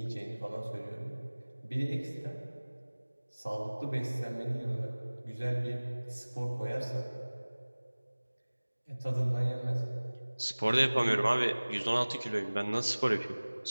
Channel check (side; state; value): both; inverted; correlation -1.00